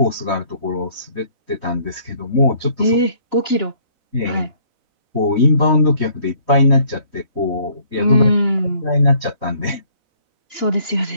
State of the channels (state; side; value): late; left; 4.0 ms